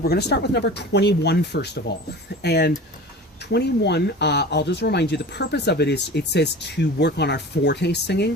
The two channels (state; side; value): normal; both; correlation 0.37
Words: we're going to start with number 21 first of all. And 21, I'll just remind you, the purpose of it is, it says to work on our forte singing.